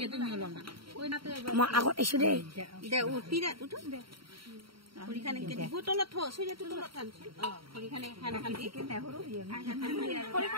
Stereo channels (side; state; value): left; late; 0.74 ms